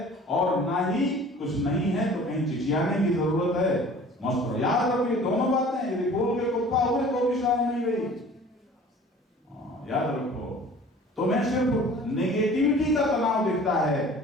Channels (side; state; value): both; normal; correlation 0.47